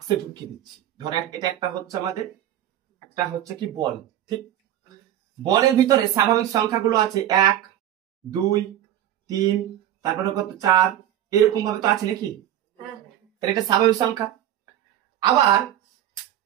ঢুকিয়ে দিচ্ছি। ধরো এটা একটা হচ্ছে আমাদের একটা হচ্ছে কি বল, ঠিক? বলের ভিতরে স্বাভাবিক সংখ্যাগুলো আছে 1, 2, 3, তারপরে কত 4, এরকম ভাবে তো আছে নাকি? তাহলে এটা স্বাভাবিক সংখ্যা। আবার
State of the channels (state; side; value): quieter; left; 11.9 dB